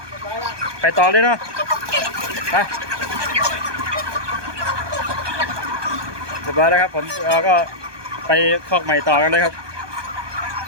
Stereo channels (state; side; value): late; left; 1.2 ms